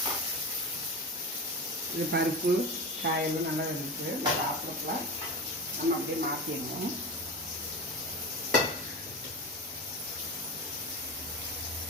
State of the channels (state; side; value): normal; both; correlation 0.26